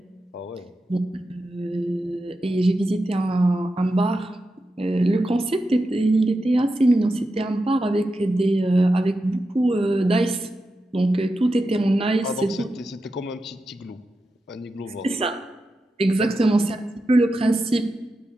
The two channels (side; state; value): both; normal; correlation 0.90